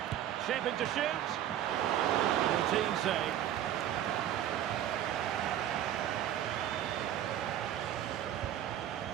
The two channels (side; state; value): left; quieter; 11.4 dB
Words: Shaping to shoot. Routine save.